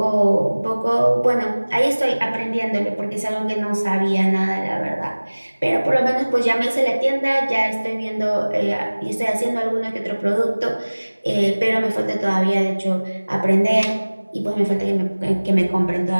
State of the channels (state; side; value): inverted; both; correlation -1.00